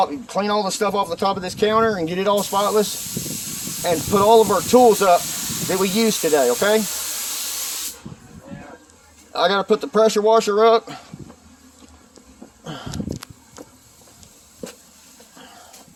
clean all the stuff off the top of this counter and get it all spotless, and put all of our tools up that we used today, okay? I got to put the pressure washer up.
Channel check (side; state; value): both; identical; correlation 1.00